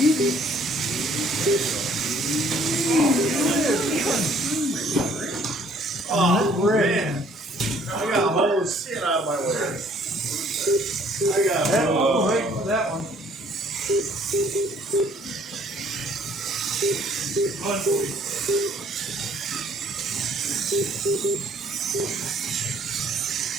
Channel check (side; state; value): both; normal; correlation 0.59